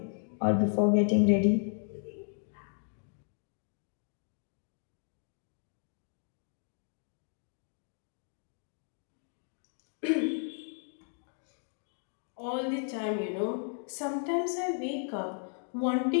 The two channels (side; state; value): right; silent; 55 dB below the other